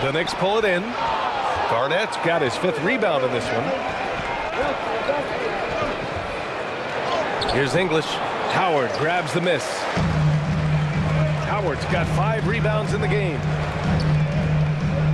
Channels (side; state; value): both; identical; correlation 1.00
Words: The Knicks pull it in. Garnett's got his 5th rebound in this one. Here's English. Howard grabs the miss. Howard's got 5 rebounds in the game.